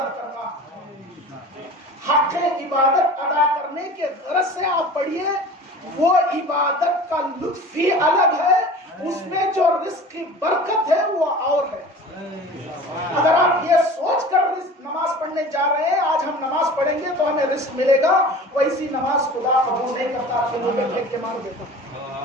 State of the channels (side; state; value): both; normal; correlation 0.39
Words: کرنا، حق عبادت ادا کرنے کے غرض سے آپ پڑھیے. وہ عبادت کا لطف ہی الگ ہے، اس میں جو رزق کی برکت ہے وہ اور ہے. اگر آپ یہ سوچ کر نماز پڑھنے جا رہے ہیں آج ہم نماز پڑھیں گے تو ہمیں رزق ملے گا، ویسی نماز خدا قبول نہیں کرتا، کھلوں میں پھینک کے مار دیتا.